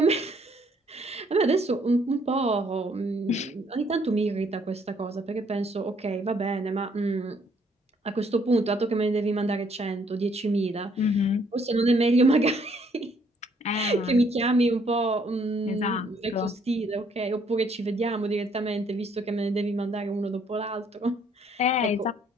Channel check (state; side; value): normal; both; correlation 0.66